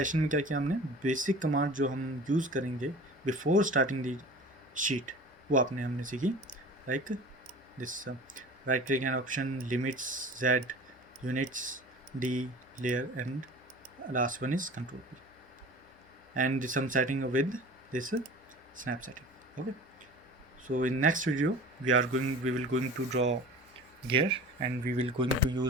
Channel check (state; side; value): normal; both; correlation 0.39